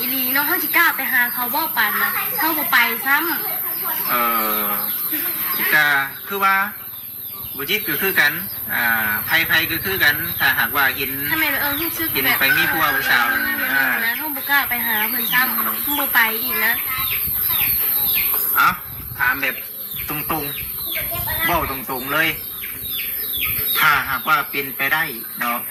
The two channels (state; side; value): identical; both; correlation 1.00